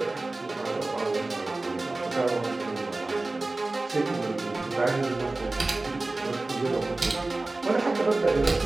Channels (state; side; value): quieter; left; 3.1 dB